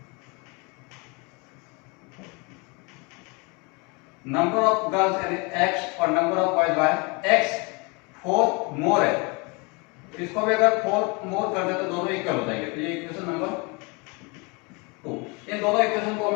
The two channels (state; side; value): quieter; right; 29.6 dB